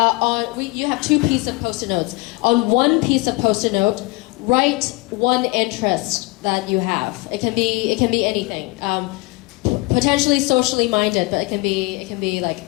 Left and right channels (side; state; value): right; quieter; 24.6 dB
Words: You have 2 pieces of post-it notes. On one piece of post-it note, write one interest that you have. It can be anything. Potentially socially minded, but it can be